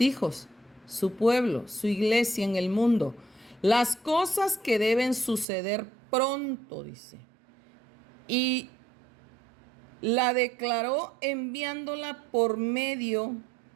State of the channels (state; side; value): drops out; left; at 5.5 s